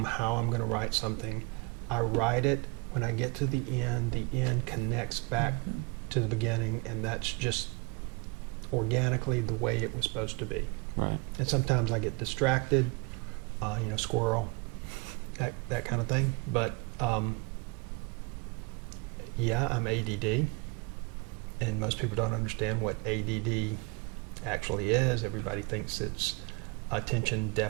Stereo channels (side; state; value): left; quieter; 29.5 dB